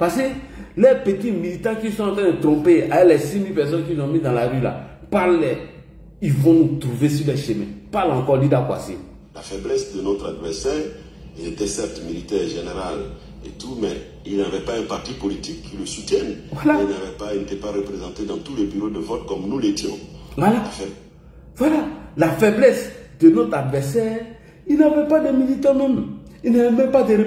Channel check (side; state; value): both; identical; correlation 1.00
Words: que les petits militants qui sont en train de tromper, avec les 6 000 personnes qu'ils ont mis dans la rue là, parlez, ils vont nous trouver sur les chemins. Parle encore, Lida Kwasi. La faiblesse de notre adversaire, il était certes militaire, général et tout, mais il n'avait pas un parti politique qui le soutienne. Voilà. Il n'était pas représenté dans tous les bureaux de vote comme nous l'étions. Voilà. Voilà. La faiblesse de notre adversaire, il n'avait pas de militants même. Il n'avait même pas de